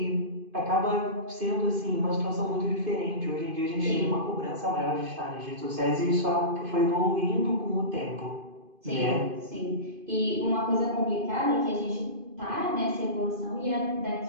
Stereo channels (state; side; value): late; left; 2.5 ms